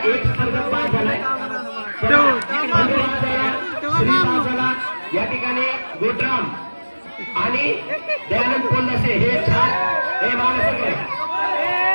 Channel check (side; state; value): both; inverted; correlation -1.00